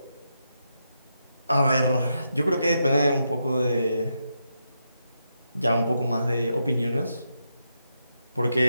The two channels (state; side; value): inverted; both; correlation -0.83